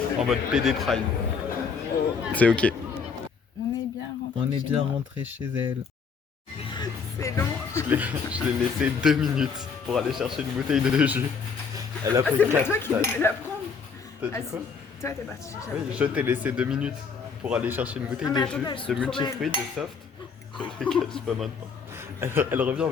En mode PD Prime. C'est ok. On est bien rentré. On est chez bien moi. rentré chez elle. C'est long. Je l'ai laissé 2 minutes pour aller chercher une bouteille de jus. Elle a Ah, pris c'est pas 4 toi qui devais la prendre. T'as dit Ah, quoi? si. Toi, t'es parti chercher la Oui, bouteille. je t'ai laissé 2 minutes pour aller chercher une bouteille Ah, mais de attendez, elles jus, sont de trop multifruits, de soft. Je les cache pas maintenant. Elle revient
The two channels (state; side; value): quieter; right; 5.6 dB